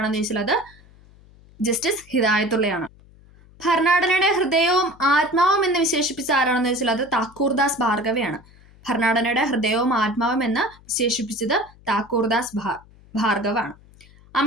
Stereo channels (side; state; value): left; noise; hum, 26 dB below the sound